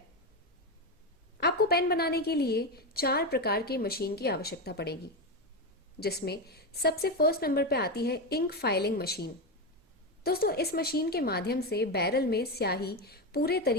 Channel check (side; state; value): both; normal; correlation 0.13